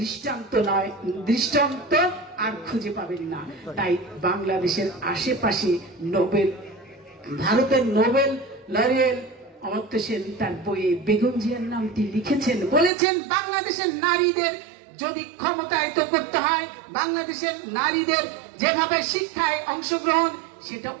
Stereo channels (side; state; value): left; drops out; at 12.9 s